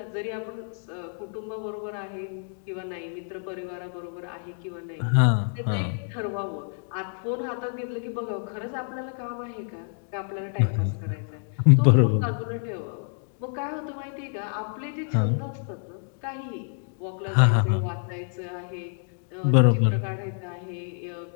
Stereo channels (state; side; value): silent; right; 60 dB below the other